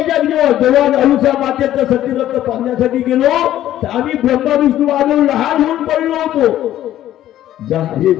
जेव्हा अनुसया मातेचं सत्यव्रत पाहण्यासाठी गेलो तर आम्ही ब्रह्मा विष्णू महादेव लहान होऊन पडलो होतो. जा, हे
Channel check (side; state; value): right; quieter; 12.8 dB